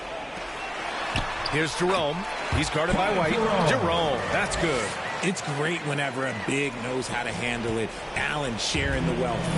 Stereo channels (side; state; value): both; identical; correlation 1.00